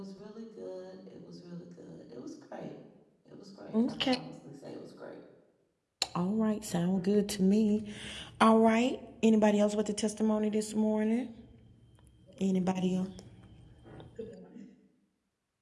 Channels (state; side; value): identical; both; correlation 1.00